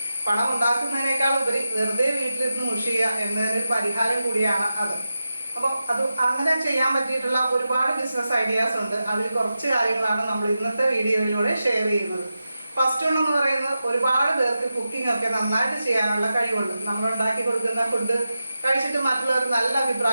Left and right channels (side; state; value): both; inverted; correlation -0.91